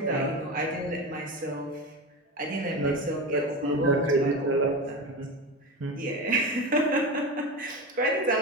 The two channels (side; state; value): both; normal; correlation 0.23